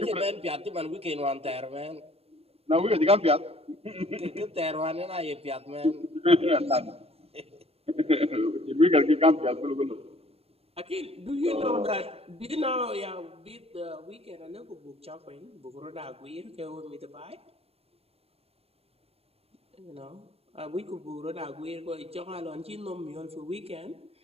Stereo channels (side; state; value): left; late; 0.29 ms